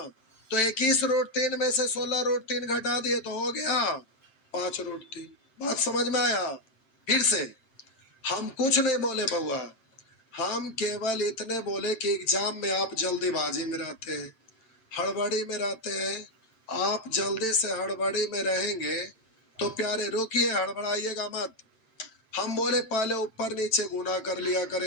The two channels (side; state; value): right; late; 7.7 ms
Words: तो 21 √3 में से 16 √3 घटा दिए तो हो गया 5 √3। बात समझ में आया? फिर से हम कुछ नहीं बोले बउआ, हम केवल इतने बोले कि एग्जाम में आप जल्दीबाजी में रहते हैं, हड़बड़ी में रहते हैं। आप जल्दी से हड़बड़ी में रहेंगे तो प्यारे रुकिए, हड़बड़ाइएगा मत। हम बोले पहले ऊपर नीचे गुना कर लिया